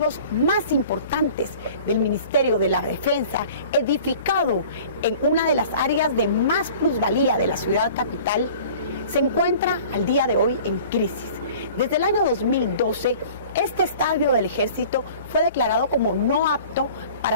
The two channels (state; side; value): inverted; both; correlation -0.46